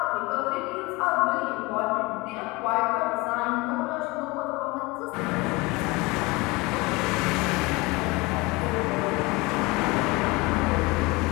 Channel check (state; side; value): quieter; right; 23.3 dB